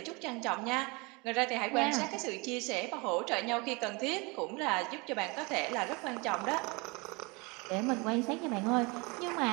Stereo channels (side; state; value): left; quieter; 27.7 dB